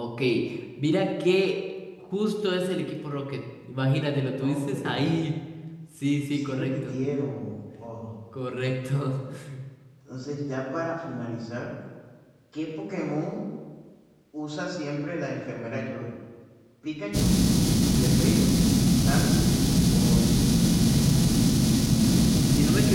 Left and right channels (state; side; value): identical; both; correlation 1.00